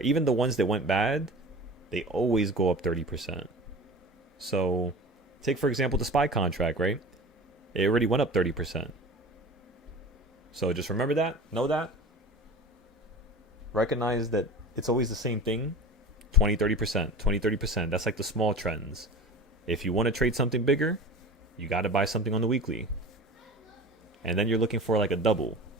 Even the ones that went bad, they always go up 30%. So take, for example, the SPY contract, right? It already went up 30%. So just remember that, know that. Recognize that it's always the same thing. 20, 30%, 20, 30%. That's like the small trends. If you want to trade something bigger, you got to buy something on the weekly. And then you're looking for like a double,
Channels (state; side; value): normal; both; correlation 0.36